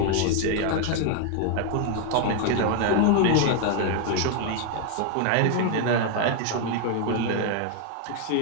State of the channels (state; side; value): different; both; correlation 0.00